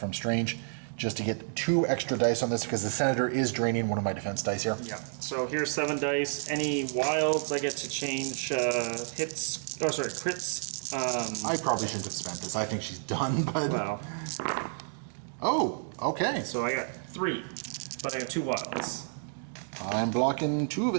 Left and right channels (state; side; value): silent; left; digital silence